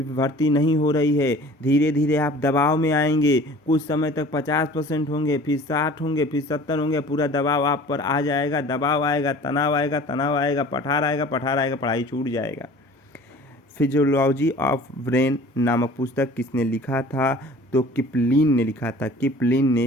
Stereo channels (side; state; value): both; normal; correlation 0.46